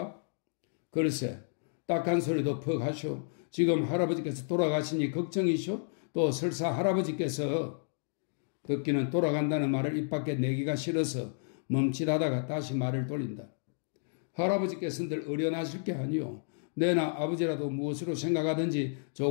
글쎄, 딱한 소리도 퍽 하시오. 지금 할아버지께서 돌아가시니 걱정이시오? 또 설사 할아버지께서 듣기는 돌아간다는 말을 입 밖에 내기가 싫어서 멈칫하다가 다시 말을 돌린다. 할아버지께서는 늘 어련하실 게 아니오. 내나 아버지라도 무엇으로 생각하든지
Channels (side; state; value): right; silent; digital silence